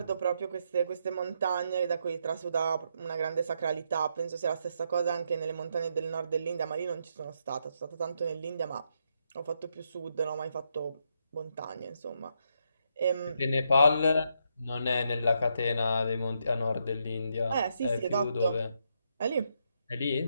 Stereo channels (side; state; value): both; inverted; correlation -0.79